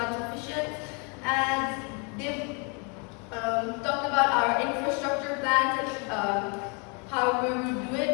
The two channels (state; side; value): quieter; right; 34.7 dB